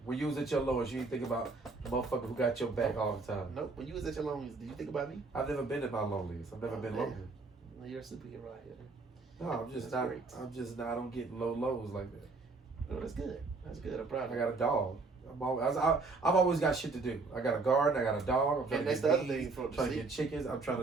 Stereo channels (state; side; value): quieter; left; 3.9 dB